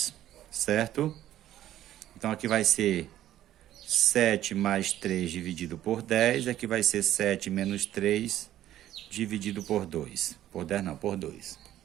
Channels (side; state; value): left; quieter; 12.7 dB